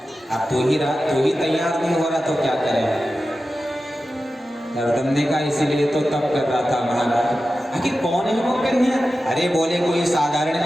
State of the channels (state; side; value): normal; both; correlation 0.93